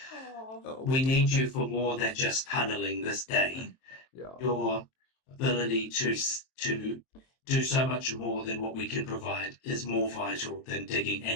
We need you for more than just tunneling this day. Yeah. Your ability to do so much more than what we can provide is more vital than digging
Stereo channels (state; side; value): late; right; 23 ms